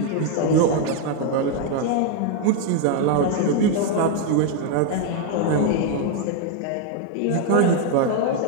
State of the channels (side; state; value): both; different; correlation 0.01